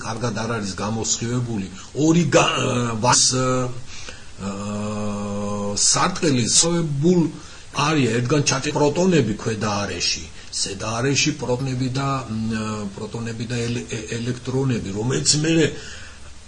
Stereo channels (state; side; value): identical; both; correlation 1.00